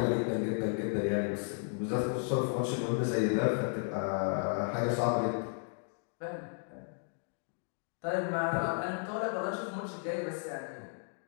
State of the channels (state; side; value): silent; right; 55 dB below the other